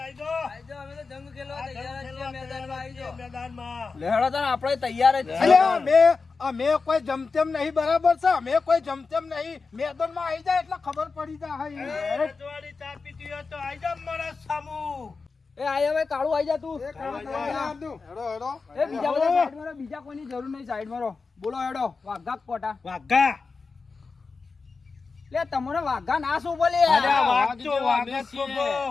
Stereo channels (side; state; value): right; quieter; 4.4 dB